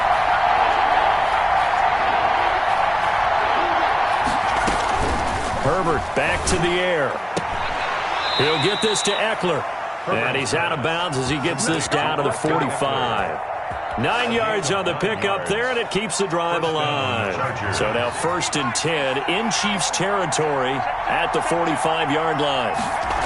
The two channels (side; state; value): both; identical; correlation 1.00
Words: Herbert back to the air. He'll get this to Eckler. And he's out of bounds as he gets this down to the 45. 9 yards on the pickup there, and it keeps the drive alive. So now 1st and 10 in Chiefs territory at the 45-yard line.